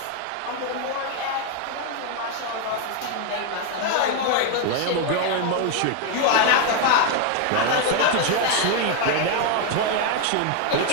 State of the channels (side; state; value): both; different; correlation 0.01